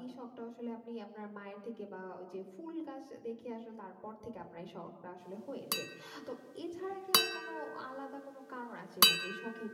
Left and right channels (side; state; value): both; identical; correlation 1.00